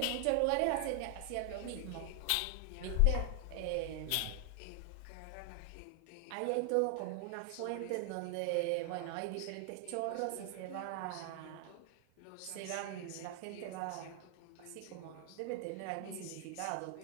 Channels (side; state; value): both; different; correlation 0.00